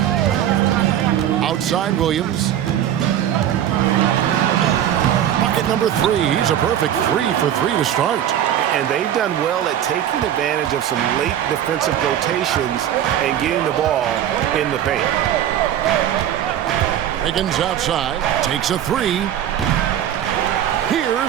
Outside Williams. Bucket number 3. He's a perfect 3 for 3 to start. And they've done well at taking advantage of some late defensive rotations and getting the ball in the paint. Wiggins outside, takes a three.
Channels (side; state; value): left; quieter; 10.7 dB